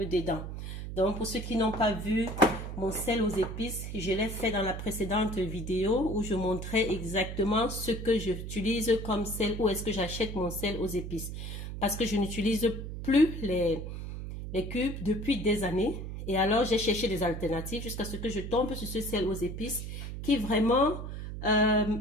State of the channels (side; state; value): right; noise; hum, 7 dB below the sound